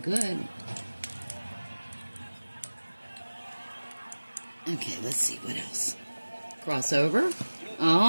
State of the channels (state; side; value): inverted; both; correlation -1.00